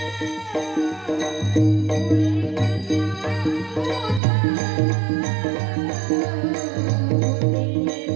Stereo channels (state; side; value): drops out; left; at 4.2 s